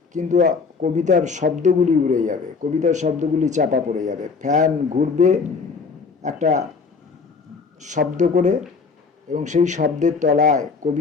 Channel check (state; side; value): quieter; right; 4.9 dB